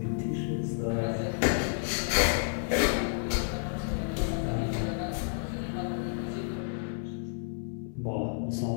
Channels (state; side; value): silent; right; 57 dB below the other